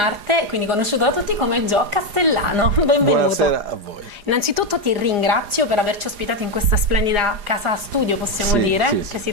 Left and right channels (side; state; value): left; late; 4.9 ms